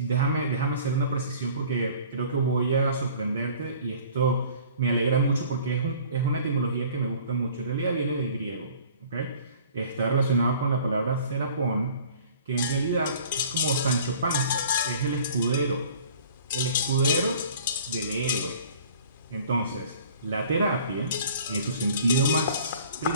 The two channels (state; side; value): inverted; both; correlation -0.49